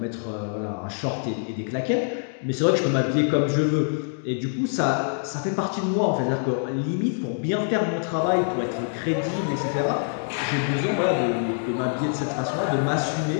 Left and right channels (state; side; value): silent; right; digital silence